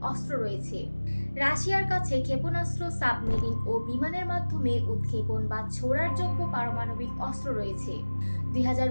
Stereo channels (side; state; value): both; inverted; correlation -1.00